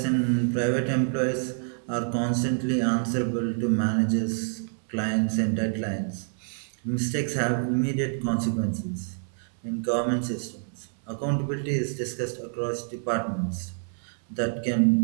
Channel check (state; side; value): silent; left; 60 dB below the other